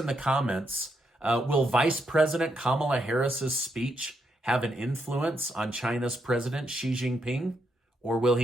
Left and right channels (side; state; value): both; normal; correlation 0.79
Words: the comments. Will Vice President Kamala Harris's speech have an influence on China's President Xi Jinping, or will